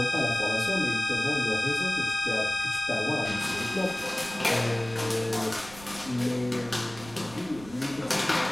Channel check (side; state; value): right; noise; rumble, 18 dB below the sound